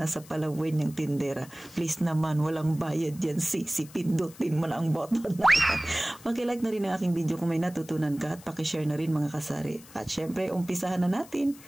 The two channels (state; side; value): noise; left; hiss, 21 dB below the sound